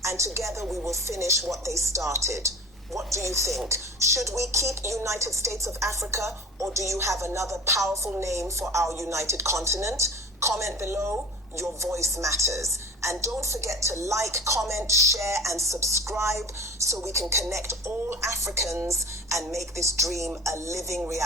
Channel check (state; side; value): normal; both; correlation 0.38